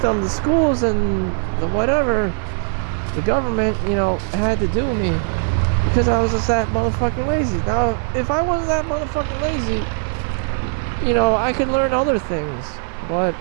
the schools, and the whatever, the government, had to do me. Because I was just that motherfucking lazy. Now, if I wasn't that motherfucking lazy, I could learn other things. But,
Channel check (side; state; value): left; silent; digital silence